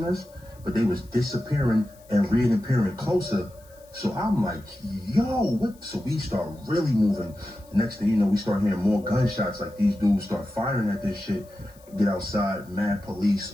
us, but they was disappearing and reappearing closer. So I'm like, yo, what? So we start really moving. Next thing you know, we start hearing more gunshots. Like, these dudes start firing at this shit. Get outside, mad police,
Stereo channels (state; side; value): noise; left; hiss, 28 dB below the sound